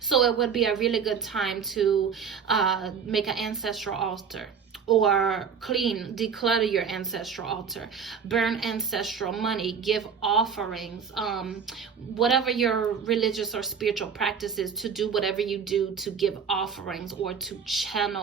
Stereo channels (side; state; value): left; quieter; 6.5 dB